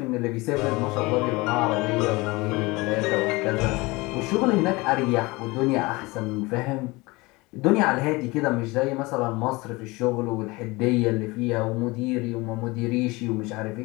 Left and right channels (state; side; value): quieter; right; 23.3 dB